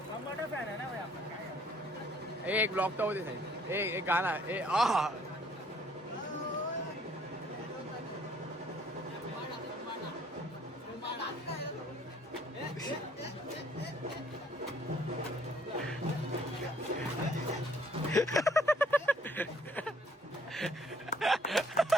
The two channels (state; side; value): normal; both; correlation 0.62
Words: टमाटर फॅन आहे ना भाई आपण. काय एक ब्लॉक तर होते साहेब. एक गाणं.